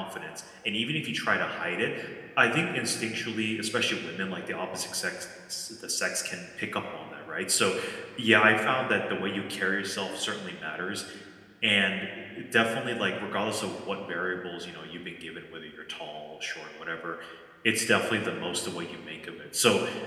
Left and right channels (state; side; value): identical; both; correlation 1.00